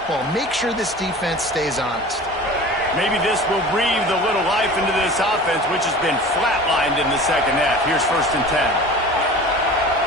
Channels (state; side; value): normal; both; correlation 0.39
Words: Make sure this defense stays honest. Maybe this will breathe a little life into this offense, which has been flatlined in the second half. Here's 1st and 10.